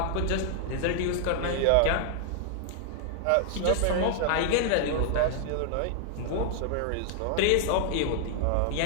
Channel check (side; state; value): both; different; correlation -0.01